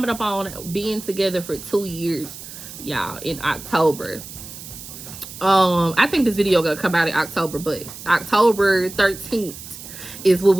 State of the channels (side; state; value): right; noise; hiss, 13 dB below the sound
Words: up on being together for 2 years, y'all, in October. I think this video gonna come out in October, but October 13th is when